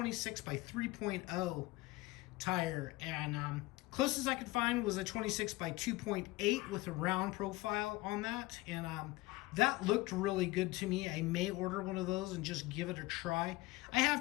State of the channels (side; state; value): right; quieter; 20.3 dB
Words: by 3.0 tire, and closest I could find was a 26 by 2.8 with a round profile on that, and that looked really good to me. I may order one of those and just give it a try. I